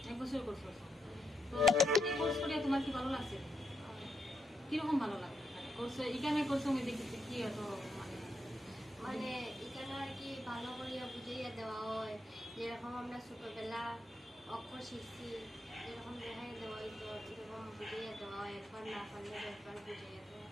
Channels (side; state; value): both; normal; correlation 0.81